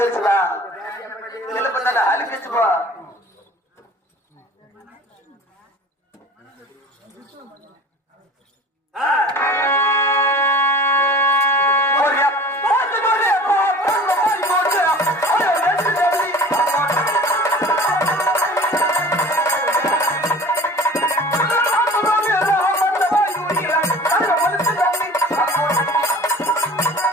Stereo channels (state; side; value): normal; both; correlation 0.42